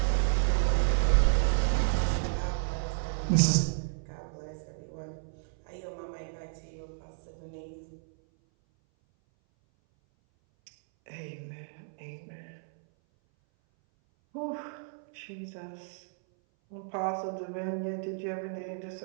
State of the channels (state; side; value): silent; left; 57 dB below the other